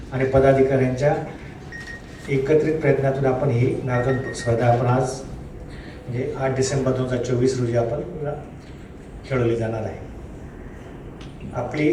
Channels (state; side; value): identical; both; correlation 1.00